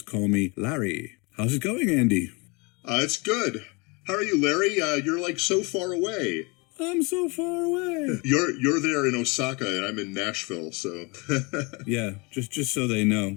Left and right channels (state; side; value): quieter; right; 28.5 dB